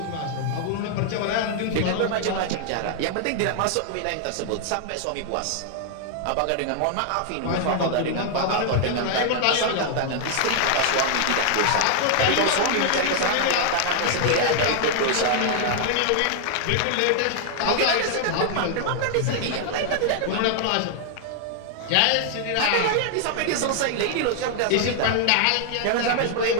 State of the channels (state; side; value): different; both; correlation 0.00